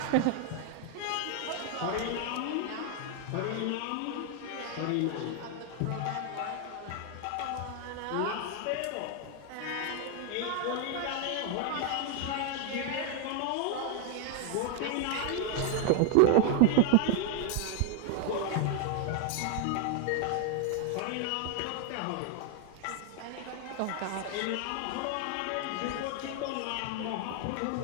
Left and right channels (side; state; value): both; different; correlation 0.00